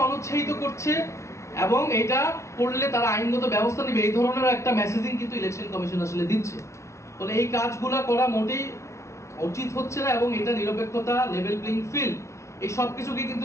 অনুৎসাহিত করছে, এবং এটা করলে তারা আইনগত ব্যবস্থা নেবে, এই ধরনের একটা মেসেজিং কিন্তু ইলেকশন কমিশন আসলে দিচ্ছে। ফলে এই কাজগুলো করা মোটেই উচিত হচ্ছে না, এবং এটা নিরপেক্ষতা, লেভেল প্লেইং ফিল্ড, এই সব কিছুকে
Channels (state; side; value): late; right; 0.14 ms